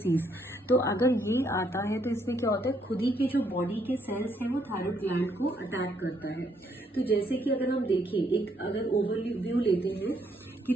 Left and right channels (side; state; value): both; normal; correlation 0.71